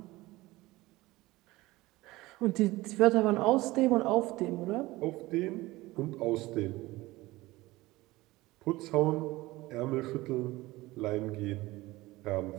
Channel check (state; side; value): quieter; left; 19.4 dB